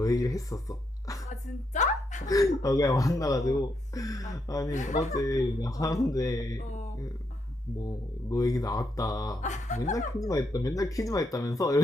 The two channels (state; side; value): normal; both; correlation 0.79